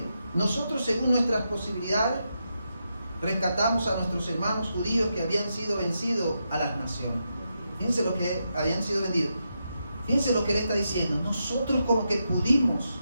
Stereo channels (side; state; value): both; inverted; correlation -0.85